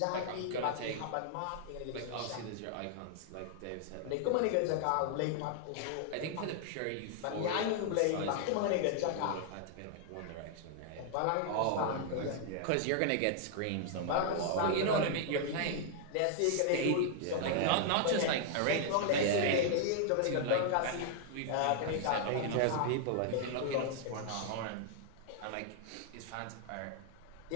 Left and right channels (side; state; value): both; different; correlation 0.00